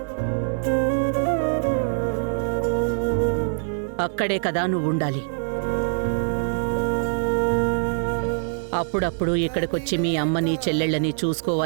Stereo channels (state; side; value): silent; left; 63 dB below the other